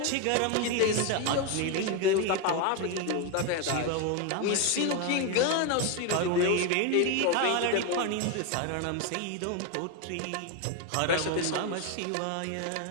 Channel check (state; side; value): different; both; correlation 0.02